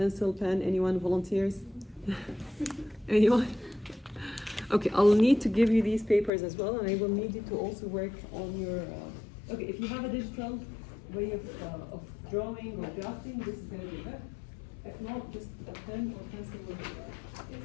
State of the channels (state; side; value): drops out; right; at 6.3 s